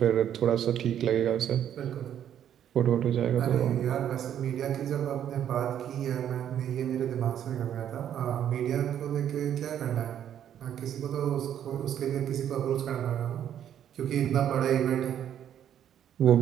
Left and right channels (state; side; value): quieter; left; 10.0 dB